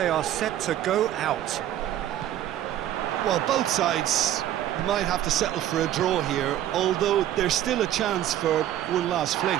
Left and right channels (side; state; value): left; quieter; 12.1 dB